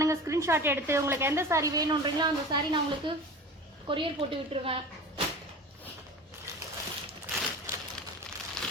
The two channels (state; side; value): normal; both; correlation 0.35